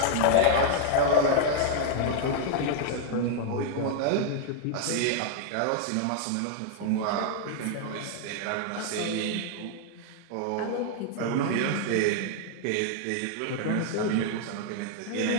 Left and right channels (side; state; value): both; different; correlation -0.01